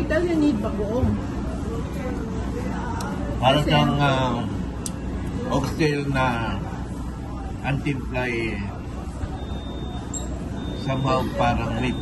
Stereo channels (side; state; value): both; identical; correlation 1.00